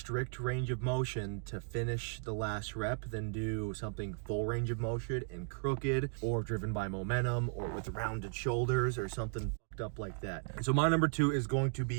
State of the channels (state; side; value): silent; left; 54 dB below the other